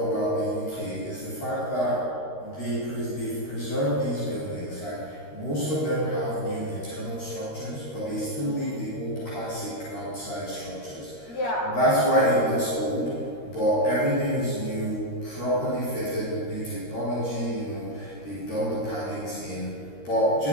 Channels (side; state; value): right; late; 13 ms